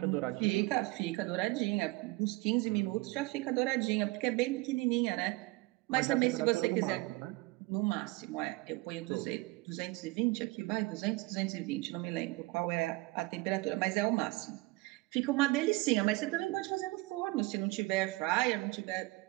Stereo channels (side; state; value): left; quieter; 22.3 dB